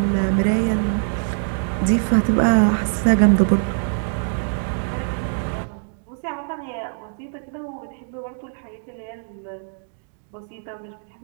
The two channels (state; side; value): silent; left; digital silence